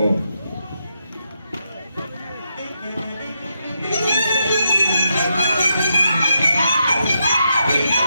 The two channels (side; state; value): both; inverted; correlation -0.83